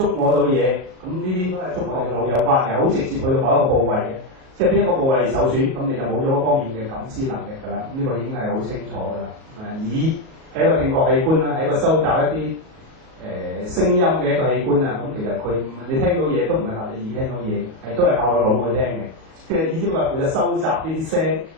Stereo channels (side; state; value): left; late; 37 ms